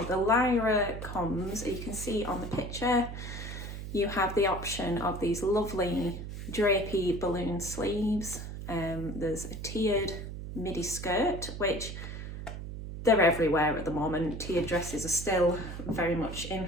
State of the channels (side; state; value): right; noise; hum, 8 dB below the sound